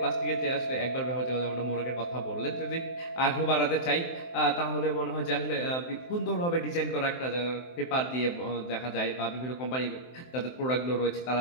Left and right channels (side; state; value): right; late; 23 ms